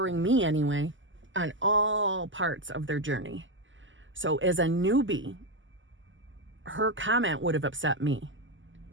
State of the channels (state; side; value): late; left; 0.55 ms